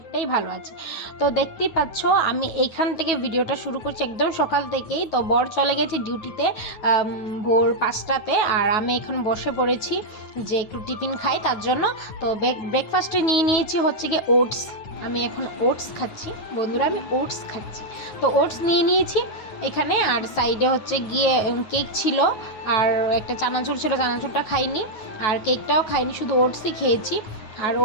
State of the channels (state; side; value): late; right; 9.4 ms